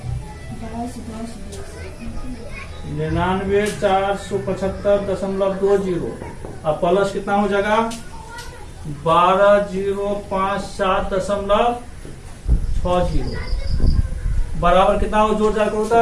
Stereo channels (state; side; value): identical; both; correlation 1.00